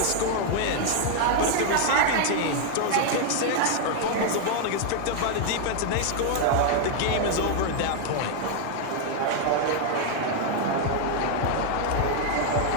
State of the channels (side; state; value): both; different; correlation 0.00